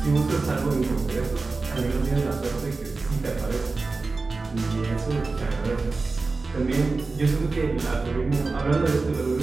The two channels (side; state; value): left; quieter; 3.8 dB